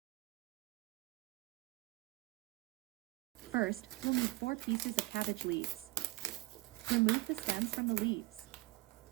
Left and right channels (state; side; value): quieter; left; 19.7 dB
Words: First, we'll need 4 pieces of cabbage leaves. Remove the stems from the leaves.